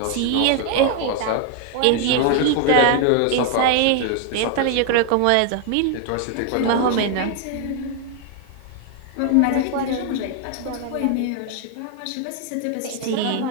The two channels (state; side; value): different; both; correlation 0.00